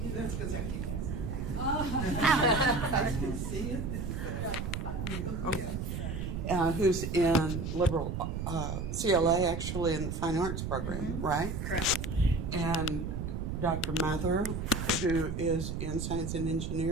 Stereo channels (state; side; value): noise; right; rumble, 4 dB below the sound